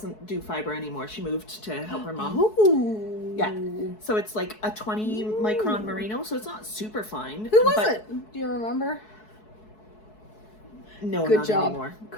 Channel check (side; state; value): right; late; 4.7 ms